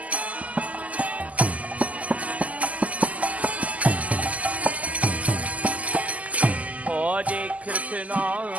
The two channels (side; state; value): left; late; 0.072 ms